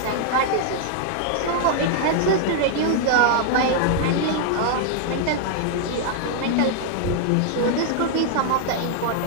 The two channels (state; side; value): different; both; correlation -0.01